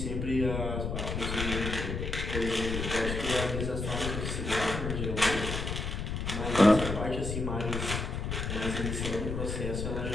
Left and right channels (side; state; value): left; noise; rumble, 3 dB below the sound